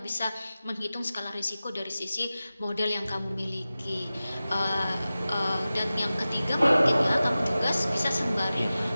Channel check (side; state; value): both; inverted; correlation -0.95